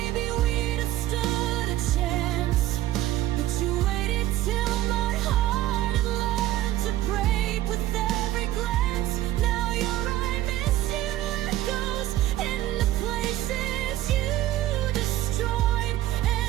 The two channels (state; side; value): quieter; left; 14.4 dB